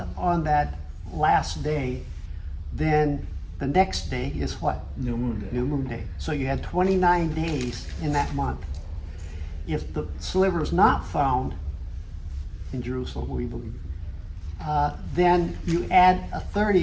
on that last day, then the next day is what? New Moon Day. New Moon Day. So you had 29 days in that month. If the sliver is not found in Jerusalem, we believe, then you add a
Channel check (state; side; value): identical; both; correlation 1.00